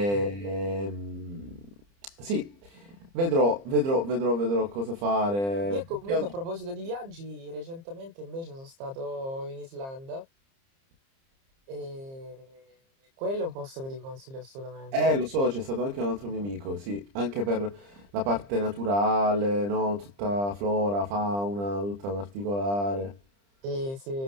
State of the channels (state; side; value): late; left; 30 ms